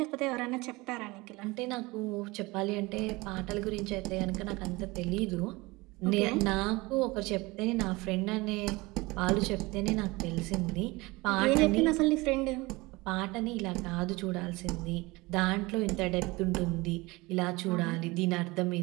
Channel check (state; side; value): quieter; left; 22.7 dB